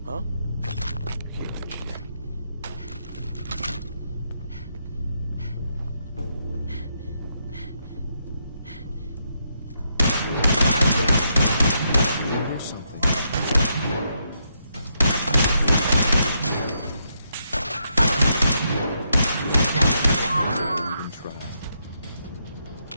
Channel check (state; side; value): inverted; both; correlation -0.79